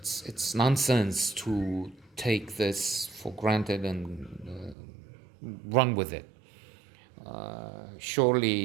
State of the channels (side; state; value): left; drops out; at 4.8 s